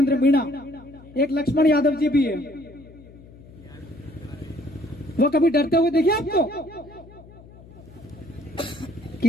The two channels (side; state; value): left; noise; hum, 21 dB below the sound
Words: मीणा, एक लक्ष्मण यादव जी भी है। वो कभी डरते हुए देखिए आपको?